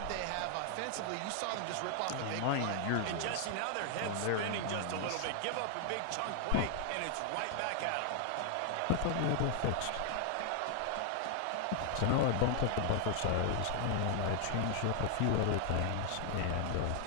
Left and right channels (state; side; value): different; both; correlation 0.00